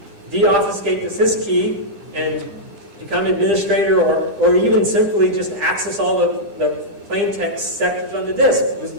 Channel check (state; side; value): late; left; 9.9 ms